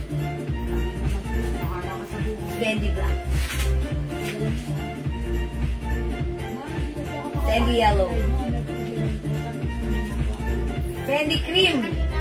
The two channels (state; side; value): identical; both; correlation 1.00